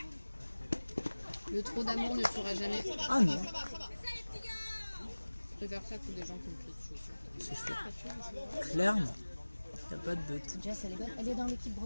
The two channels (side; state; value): both; inverted; correlation -1.00